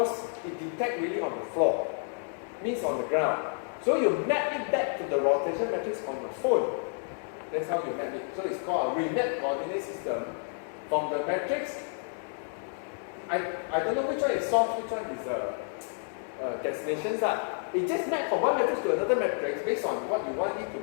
it detects really on the floor, means on the ground. So you map it back to the rotation matrix on the phone. That's how you map it. So it's called a remap coordinate system from the matrix. I don't know which one is source, which one is destinations. It just maps from one matrix to another matrix based on what you want it to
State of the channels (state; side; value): silent; right; 58 dB below the other